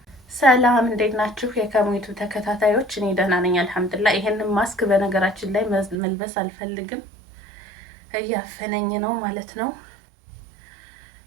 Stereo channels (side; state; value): left; drops out; at 6.0 s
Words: ሰላም እንዴት ናችሁ? የከሙይቱ ተከታታዮች፣ እኔ ደህና ነኝ አልሐምዱሊላህ። ይሄንን ማስክ በነገራችን ላይ መልበስ አልፈልግም፣ እያፈነኝ ነው ማለት ነው።